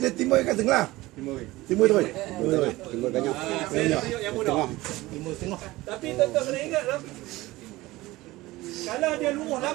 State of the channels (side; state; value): left; quieter; 19.0 dB